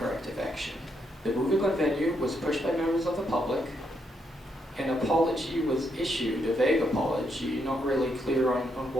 action. The moving on venue was pushed by members of the public. An apology was issued, a vague apology, not really clear on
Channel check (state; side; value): normal; both; correlation 0.77